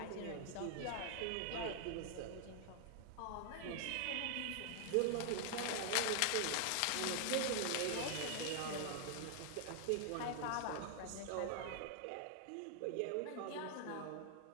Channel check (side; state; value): both; different; correlation 0.00